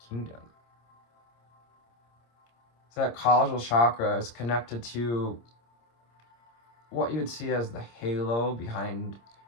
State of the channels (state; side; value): late; right; 26 ms